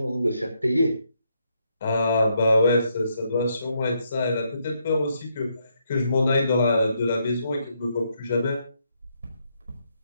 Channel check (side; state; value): both; inverted; correlation -0.77